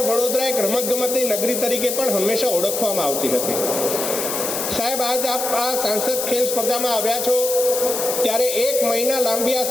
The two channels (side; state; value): left; noise; hiss, 3 dB below the sound